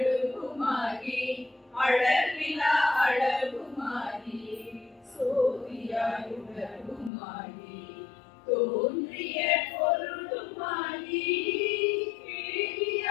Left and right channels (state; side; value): drops out; right; at 7.1 s